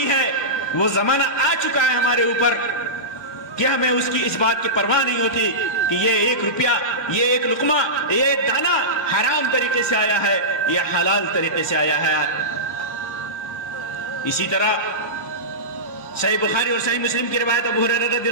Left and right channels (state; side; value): late; right; 1.2 ms